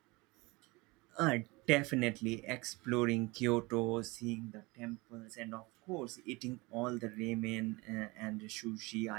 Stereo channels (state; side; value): quieter; left; 24.3 dB